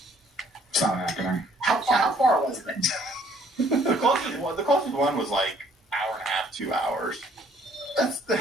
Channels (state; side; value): normal; both; correlation 0.62